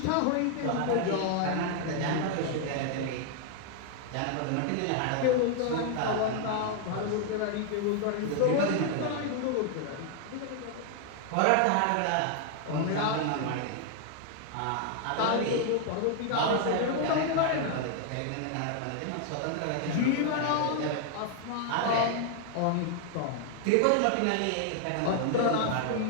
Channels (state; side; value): different; both; correlation 0.00